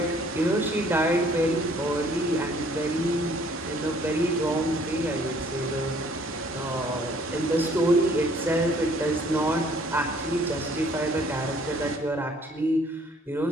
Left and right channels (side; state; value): both; normal; correlation 0.59